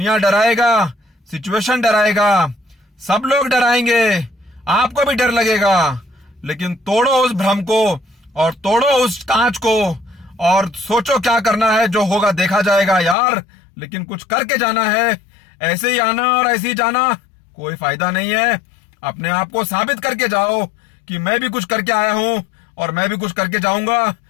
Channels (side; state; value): right; drops out; at 13.2 s